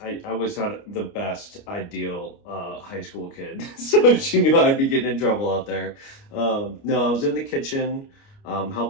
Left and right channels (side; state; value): right; late; 29 ms